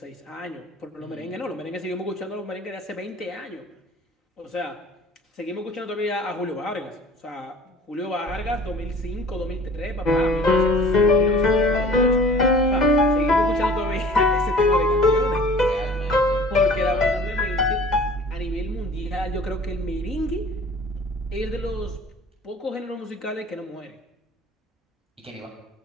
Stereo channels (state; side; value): normal; both; correlation 0.46